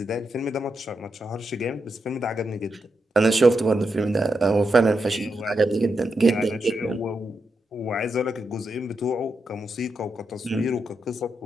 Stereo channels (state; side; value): normal; both; correlation 0.85